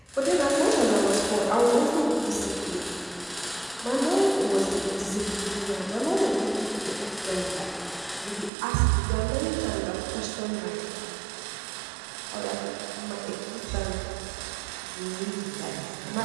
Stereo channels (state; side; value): drops out; left; at 8.5 s